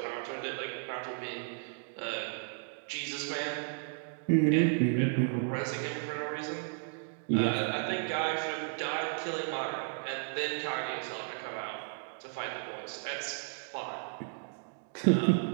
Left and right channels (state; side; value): silent; left; 55 dB below the other